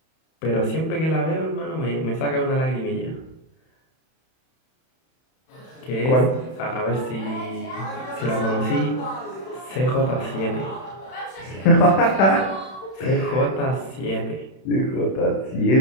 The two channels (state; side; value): late; right; 31 ms